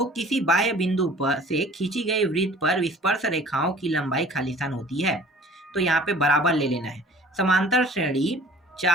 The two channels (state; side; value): normal; both; correlation 0.49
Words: किसी बाह्य बिंदु पर से खींची गई वृत्त पर विस्पर्श रेखाओं की लंबाई खालिस्तान होती है, तो यहाँ पे बराबर ले लेना है। समांतर श्रेणी